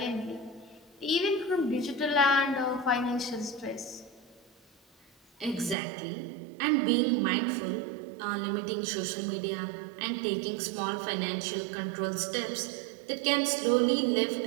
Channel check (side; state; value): left; drops out; at 5.8 s